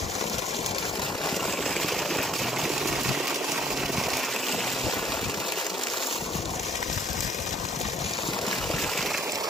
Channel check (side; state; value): both; normal; correlation 0.61